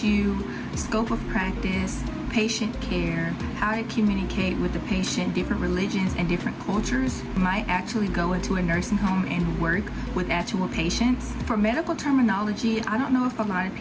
you scope of practice, patient care, how to communicate with the patient, different religions and different cultures. You might actually go into a nursing home and work with actual patients. For medical terminology, I don't know if a lot of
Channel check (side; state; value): both; identical; correlation 1.00